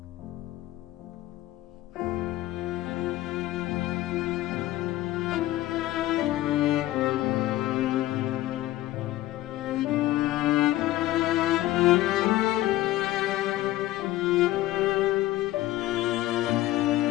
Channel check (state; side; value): quieter; right; 15.9 dB